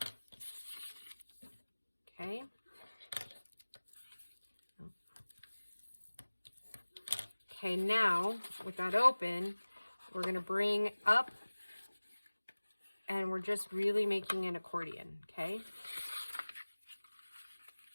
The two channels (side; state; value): both; inverted; correlation -1.00